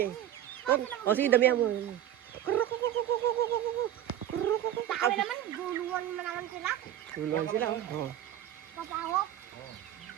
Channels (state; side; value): quieter; left; 11.6 dB